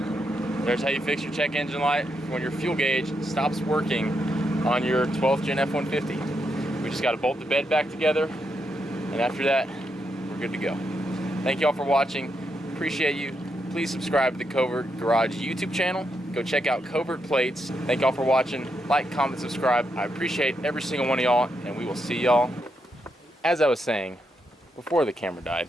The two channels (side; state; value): both; normal; correlation 0.81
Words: There's how you fix your check engine light when your fuel gauge stops working on your 12th gen F-150. We just got to bolt the bed back together, and after that, we're good to go. Thank you all for watching. Appreciate you. Please subscribe to the Covert Garage YouTube channel. Go check out Covert Plates. Thank y'all for watching. Like, comment, subscribe. I appreciate every single one of y'all, and we will see y'all. As I was saying before the camera died,